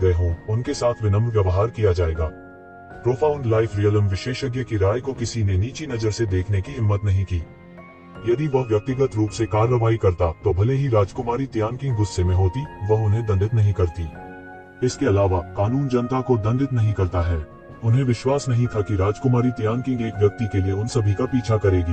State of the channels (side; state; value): both; identical; correlation 1.00